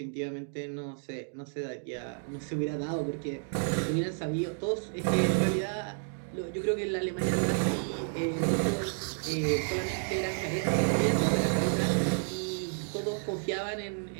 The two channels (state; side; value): silent; left; 57 dB below the other